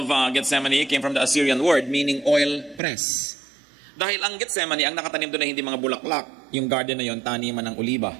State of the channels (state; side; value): drops out; left; at 2.8 s